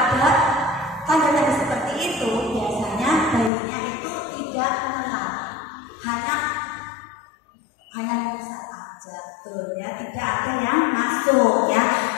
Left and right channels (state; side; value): drops out; right; at 3.5 s